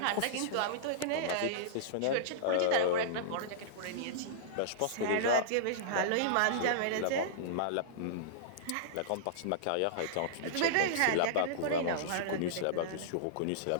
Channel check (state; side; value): different; both; correlation -0.03